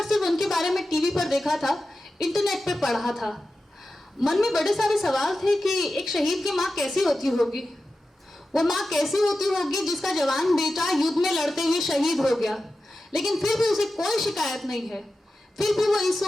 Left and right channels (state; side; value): normal; both; correlation 0.93